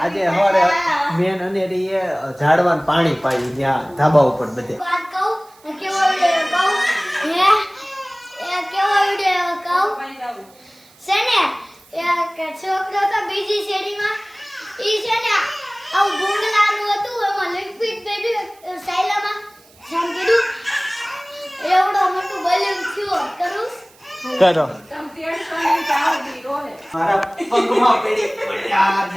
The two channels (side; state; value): right; noise; hiss, 28 dB below the sound